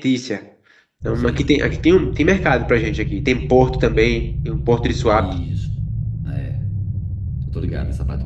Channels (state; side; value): identical; both; correlation 1.00